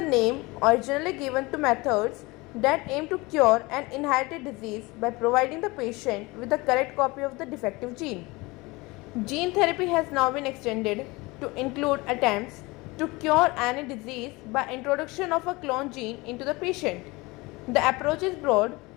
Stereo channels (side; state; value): right; quieter; 23.4 dB